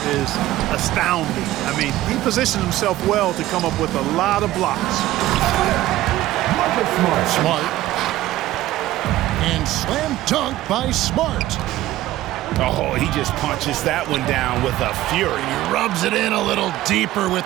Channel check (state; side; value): quieter; left; 15.4 dB